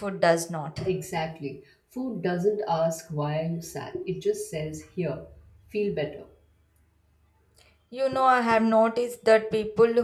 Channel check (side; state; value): both; identical; correlation 1.00